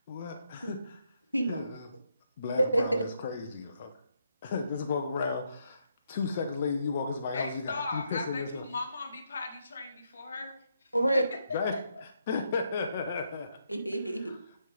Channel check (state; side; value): inverted; both; correlation -0.78